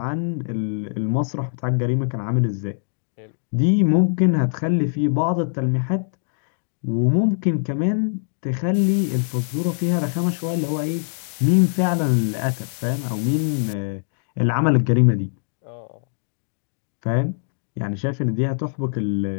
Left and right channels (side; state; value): right; silent; digital silence